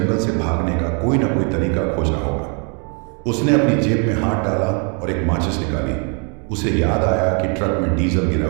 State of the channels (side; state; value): left; quieter; 37.3 dB